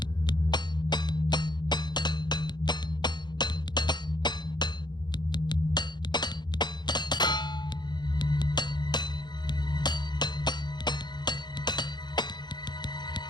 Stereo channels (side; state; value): right; late; 0.21 ms